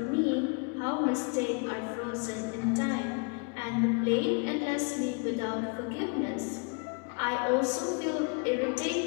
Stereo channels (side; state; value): right; quieter; 34.2 dB